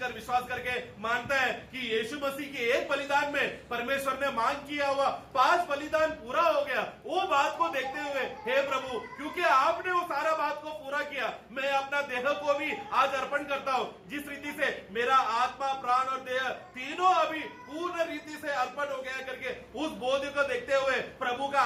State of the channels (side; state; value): both; identical; correlation 1.00